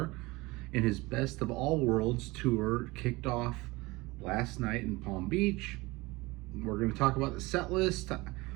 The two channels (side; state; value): left; quieter; 22.3 dB